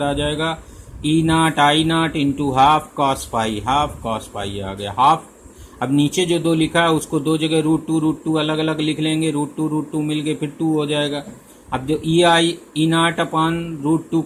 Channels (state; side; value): identical; both; correlation 1.00